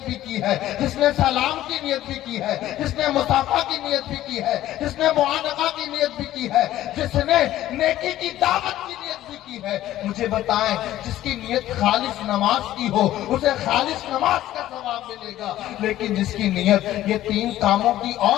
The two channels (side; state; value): right; quieter; 13.9 dB